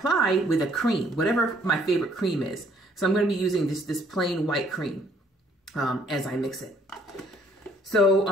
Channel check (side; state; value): both; normal; correlation 0.63